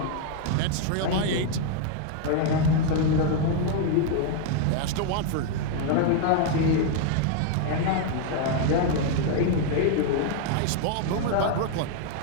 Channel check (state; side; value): different; both; correlation 0.00